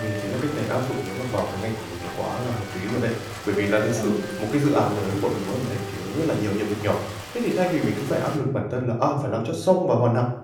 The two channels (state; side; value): identical; both; correlation 1.00